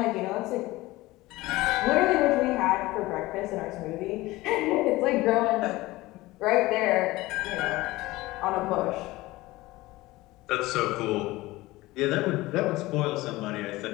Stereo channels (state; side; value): quieter; right; 19.3 dB